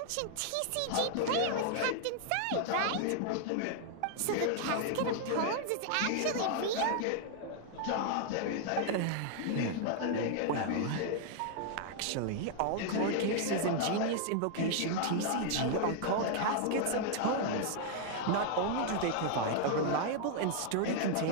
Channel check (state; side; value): different; both; correlation 0.00